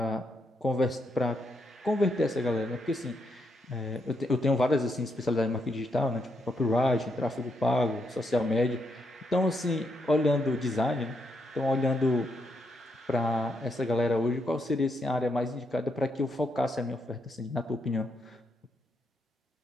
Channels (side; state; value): both; normal; correlation 0.79